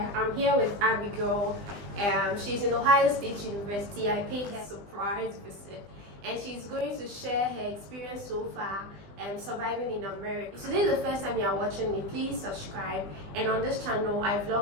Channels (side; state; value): left; late; 20 ms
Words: here with Abigail. She's in Ohio State University. I paid her a surprise visit and she's going to share her experience so far surviving in America. If today is the first time you are watching me, please subscribe. And on this channel, I